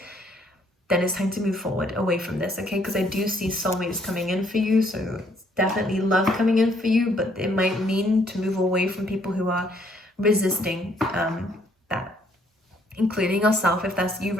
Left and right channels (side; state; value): both; normal; correlation 0.66